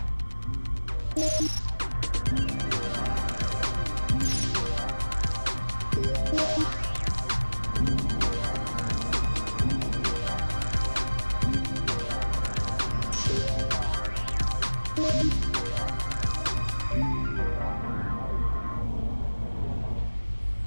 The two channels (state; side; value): inverted; both; correlation -1.00